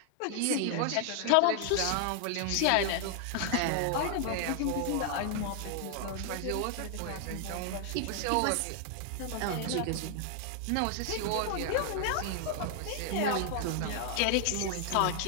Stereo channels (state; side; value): different; both; correlation 0.00